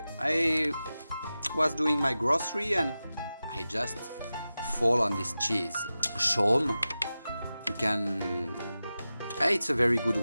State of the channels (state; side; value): inverted; both; correlation -0.94